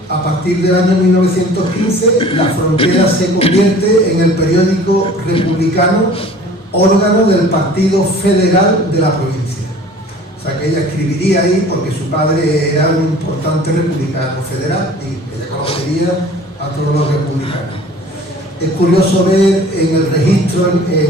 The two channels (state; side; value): normal; both; correlation 0.47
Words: A partir del año 1915, La Frontera se convierte en el periódico republicano, órgano del Partido Federal de la provincia. O sea que ella escribiría ahí porque su padre era un importante republicano federal y ella conocería a todos los republicanos. Es curioso ver en el registro,